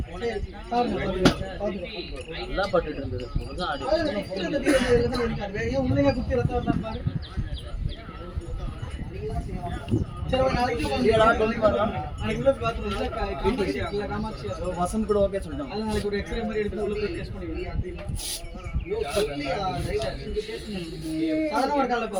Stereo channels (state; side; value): identical; both; correlation 1.00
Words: நல்லா பட்டுட்டு இருந்தது. உண்மையா குத்தி ரத்தம் பாரு. வசந்த் கூட ஓகே சொல்லிட்டான். நாளைக்கு ஒரு எக்ஸ்ரே மாதிரி எடுத்து உள்ள போய் டெஸ்ட் பண்ணுவீங்க.